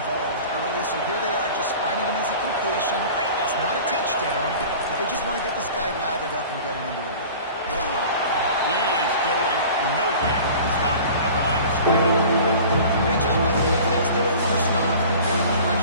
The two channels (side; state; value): both; inverted; correlation -0.42